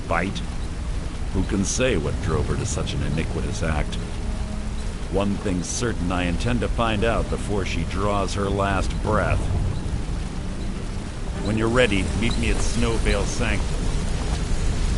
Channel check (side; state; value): both; identical; correlation 1.00